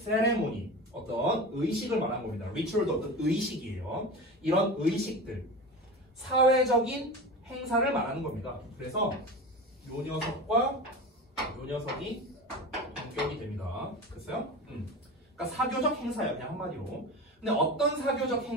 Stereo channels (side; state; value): both; normal; correlation 0.29